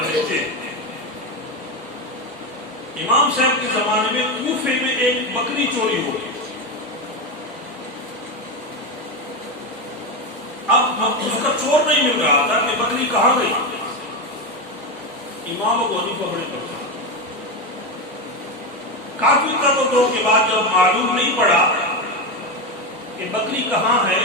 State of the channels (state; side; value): normal; both; correlation 0.14